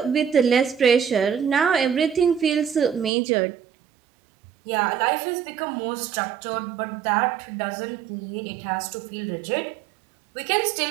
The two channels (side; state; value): left; drops out; at 3.1 s